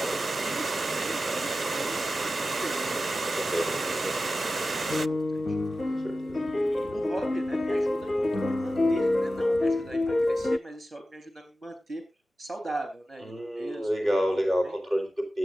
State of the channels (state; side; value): normal; both; correlation 0.94